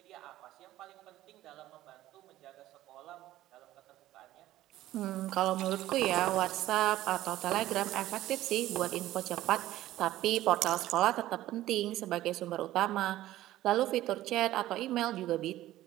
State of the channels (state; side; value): quieter; left; 14.8 dB